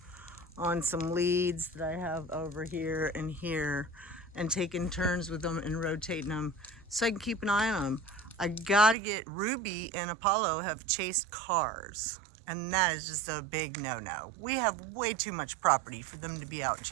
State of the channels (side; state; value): left; drops out; at 9.0 s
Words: on some leads that I have over here and here and taking turns with them and rotating them so I can keep an eye on them. I gotta get Ruby and Apollo have chased cars, and that is just a big no-no. We have way too much property for them to be out